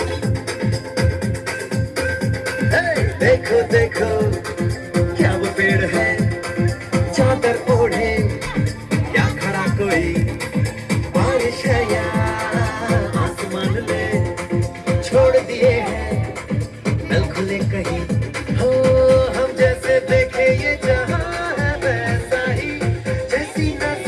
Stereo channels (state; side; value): identical; both; correlation 1.00